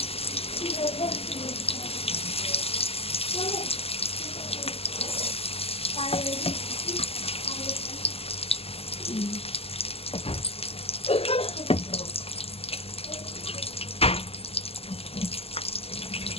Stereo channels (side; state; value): right; late; 0.29 ms